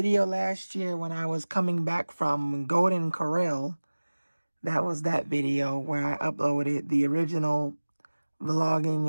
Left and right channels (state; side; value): inverted; both; correlation -1.00